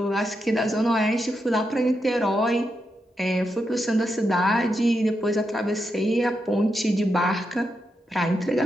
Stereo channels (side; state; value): both; normal; correlation 0.85